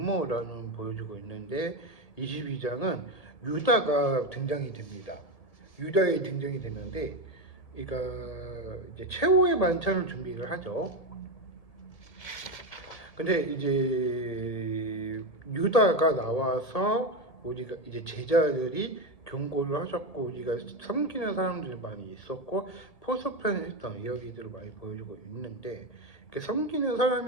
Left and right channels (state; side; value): late; right; 1.7 ms